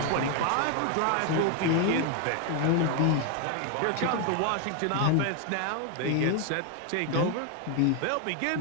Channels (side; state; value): both; different; correlation 0.01